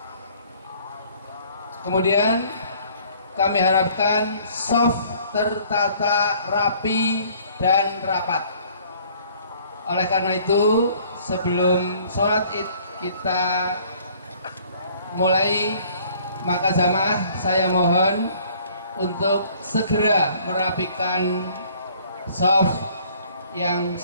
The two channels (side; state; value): both; inverted; correlation -0.57